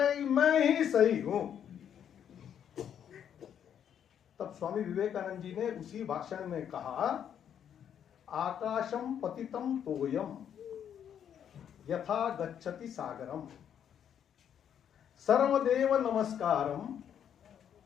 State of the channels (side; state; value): right; quieter; 9.0 dB